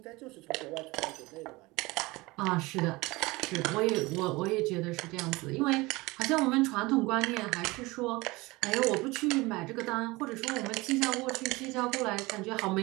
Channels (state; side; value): quieter; left; 22.3 dB